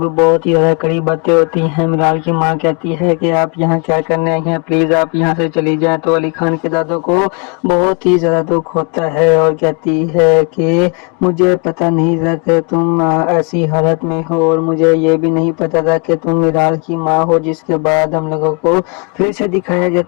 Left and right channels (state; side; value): quieter; right; 34.4 dB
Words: बहुत ही ज्यादा कड़ी बातें होती हैं। मिराल की माँ कहती है कि आप यहाँ क्या करने आई हैं, प्लीज आप यहाँ से चली जाएं। तो अली खान के दादू को बहुत ही ज्यादा दुख होता है और कहती है कि मुझे पता नहीं था कि तुम ऐसी हालत में हो और मुझे ये भी नहीं पता था कि तुम मिराल की माँ हो। जिसके बाद हम लोगों को फिर से दिखाया